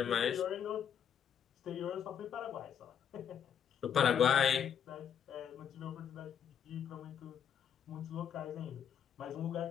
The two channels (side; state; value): right; quieter; 8.2 dB